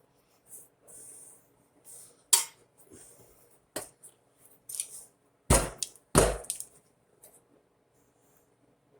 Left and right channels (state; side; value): identical; both; correlation 1.00